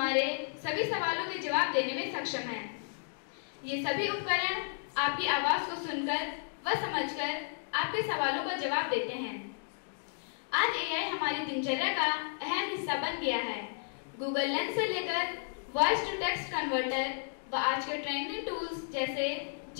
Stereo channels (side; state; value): right; silent; digital silence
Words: सभी सवालों के जवाब देने में सक्षम है। ये सभी उपकरण आपकी आवाज को सुनकर व समझकर आपके सवालों का जवाब देते हैं। आज एआई हमारी दिनचर्या का अहम हिस्सा बन गया है। गूगल लेंस से लेकर वॉइस टू टेक्स्ट कन्वर्टर व आज के ट्रेंडिंग टूल्स जैसे